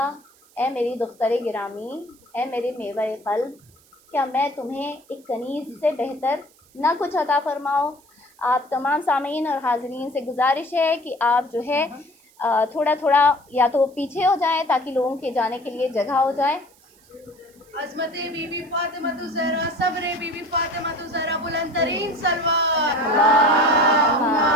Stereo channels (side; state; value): right; noise; hiss, 30 dB below the sound